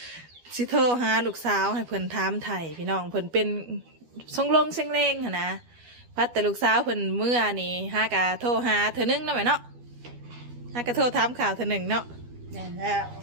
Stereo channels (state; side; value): late; left; 12 ms